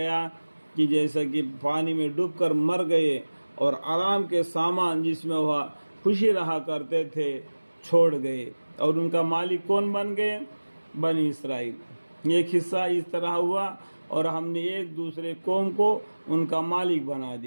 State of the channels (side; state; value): both; inverted; correlation -1.00